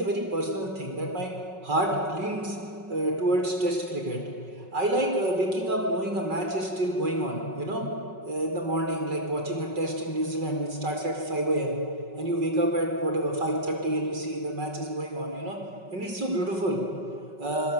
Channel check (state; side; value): late; left; 5.4 ms